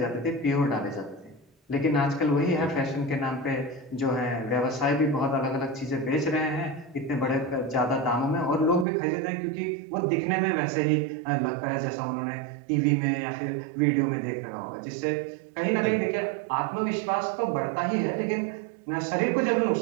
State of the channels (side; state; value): left; drops out; at 8.8 s